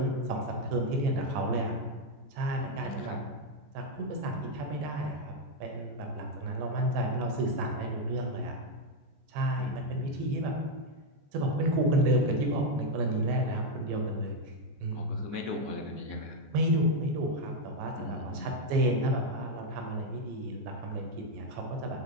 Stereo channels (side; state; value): left; late; 14 ms